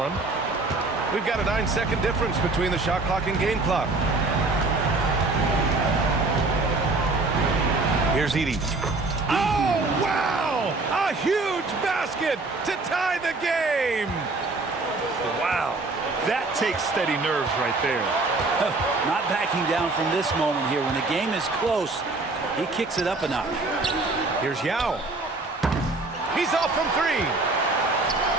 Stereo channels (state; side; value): quieter; left; 3.3 dB